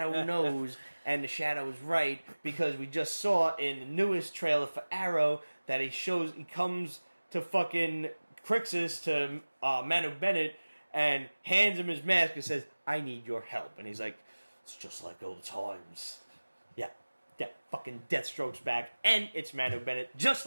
knows, and the Shadow is right, because we just saw in the newest trailer for Arrow that he comes to fucking Crixus, to Manu Bennett, and hands him his mask and says, I need your help. And he's like, it's just like old times. Yeah, fucking Deathstroke's back, and it's Manu Bennett, just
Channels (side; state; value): both; inverted; correlation -1.00